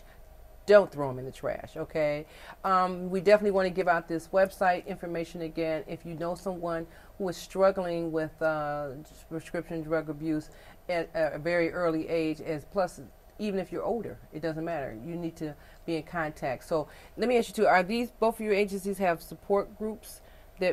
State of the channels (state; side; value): identical; both; correlation 1.00